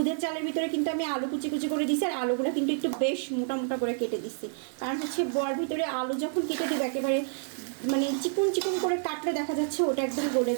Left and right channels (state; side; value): silent; left; 59 dB below the other